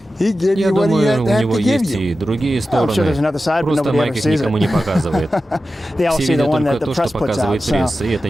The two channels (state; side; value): normal; both; correlation 0.93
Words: Я думаю, у него есть и другие стороны. Просто Майк их никому не показывает. Все видят только то, что показывает пресса, и это